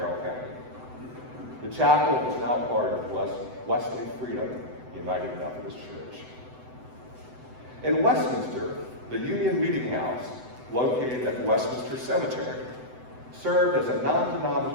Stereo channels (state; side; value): late; left; 7.9 ms